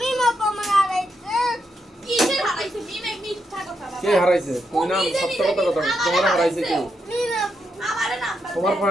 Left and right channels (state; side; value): normal; both; correlation 0.82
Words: পামা আড়াইছে কিসের হারাইছে মিমে মিথ্যা কথা বাবা কে হারাইছে তুই না সত্য কথা কথা তোমার হারাইছে কে মিমা আমারে নাম তোমার